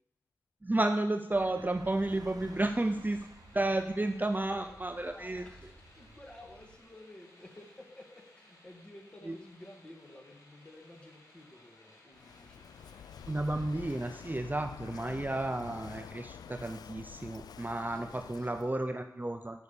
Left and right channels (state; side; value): normal; both; correlation 0.92